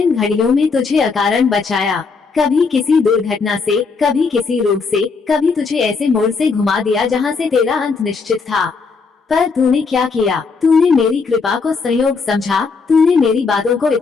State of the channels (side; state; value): right; quieter; 4.8 dB